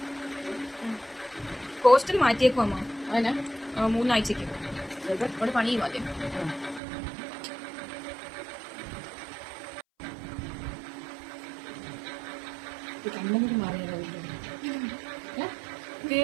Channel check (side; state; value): left; drops out; at 6.8 s